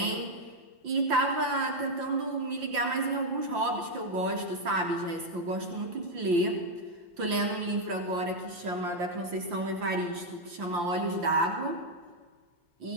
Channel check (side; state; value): left; late; 5.8 ms